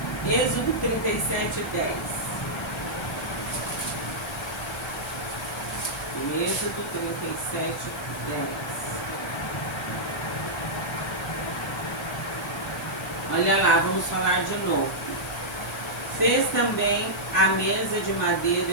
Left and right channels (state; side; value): noise; left; hiss, 16 dB below the sound